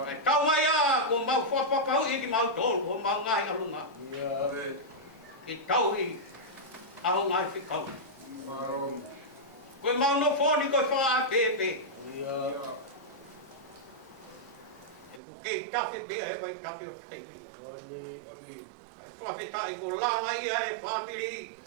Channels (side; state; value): left; drops out; at 15.2 s